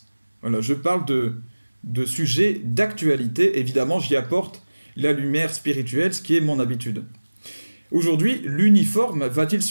Voilà, je parle de sujets d'actualité. Évidemment, j'y apporte la lumière spirituelle, ce qui est mon habitude. Aujourd'hui, l'uniforme va-t-il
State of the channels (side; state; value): both; inverted; correlation -1.00